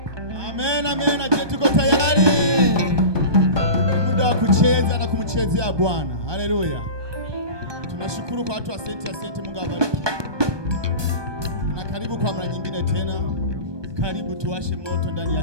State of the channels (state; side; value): late; left; 1.2 ms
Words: Amen, amen. Je, tuko tayari? Ni muda wa kucheza na kumchezea Bwana. Haleluya. Tunashukuru kwa watu wa asante, Mungu awabariki. Na karibu kwa mara nyingine tena. Karibu tuwashe moto ndani ya